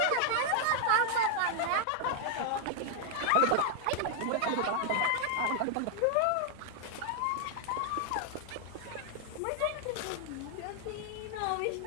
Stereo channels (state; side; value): different; both; correlation 0.00